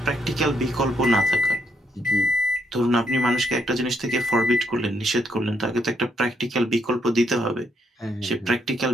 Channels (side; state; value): both; normal; correlation 0.75